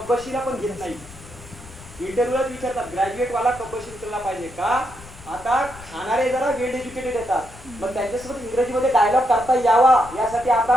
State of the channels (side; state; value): left; noise; rumble, 18 dB below the sound